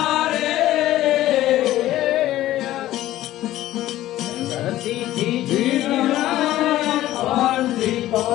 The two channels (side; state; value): right; quieter; 14.6 dB